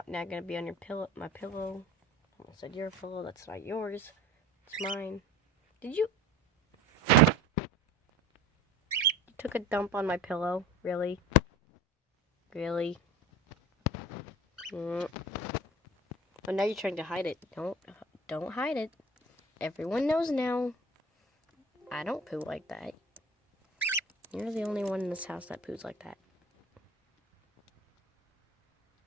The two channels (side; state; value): both; normal; correlation 0.39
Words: now gonna be on your pillow, my pillow. I almost said your pillow, that's not yours. It's mine. Did you took a dump on my pillow? Really? Really? Oh, now you're trying to hide it. Don't hide it. Everyone knows now. I don't poo like that. You're the only one in this house that poos like that.